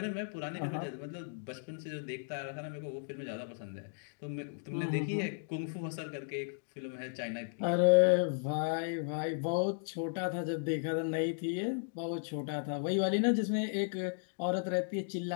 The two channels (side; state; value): right; silent; digital silence